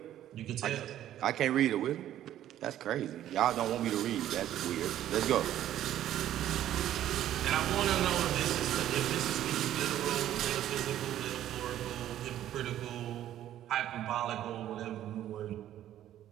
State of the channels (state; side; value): quieter; left; 12.1 dB